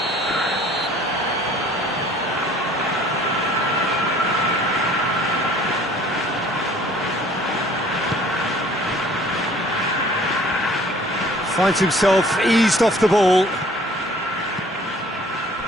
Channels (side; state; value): both; normal; correlation 0.53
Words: Finds himself eased off the ball.